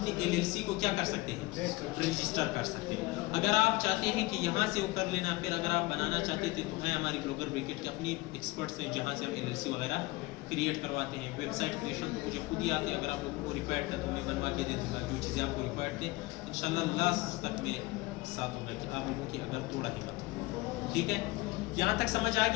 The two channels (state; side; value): quieter; right; 21.6 dB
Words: LLC को क्या कर सकते हैं, रजिस्टर कर सकते हैं। अगर आप चाहते हैं कि यहाँ से वो कर लेना, फिर अगर आप बनाना चाहते थे तो हैं हमारी ब्लॉगर ब्रिकेट के अपनी एक्सपर्ट्स हैं जहाँ से हम LLC वगैरह क्रिएट करवाते हैं। वेबसाइट क्रिएशन तो मुझे खुद ही आते हैं, अगर आप लोगों को रिक्वायर्ड था तो मैं बनवा के दे दूँगा जो चीज़ें आपको रिक्वायर्ड थे। इंशाल्लाह लास्ट तक में साथ होगा कि आप लोगों की अगर थोड़ा हिम्मत हो, ठीक है। यहाँ तक समझ आ